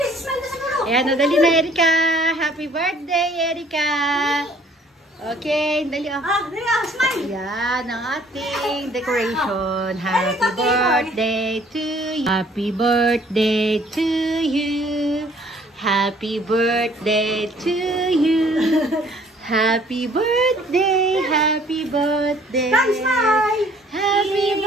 Ayan, nadali na, Erika. Happy birthday, Erika. Okay, dali. Smile. Ayan, ang ating decoration. Happy birthday to you. Happy birthday to you. Happy birthday to you. Happy birthday, happy birthday. Smile. Happy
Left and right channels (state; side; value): normal; both; correlation 0.58